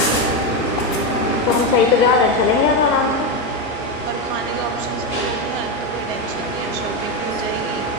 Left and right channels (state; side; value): normal; both; correlation 0.11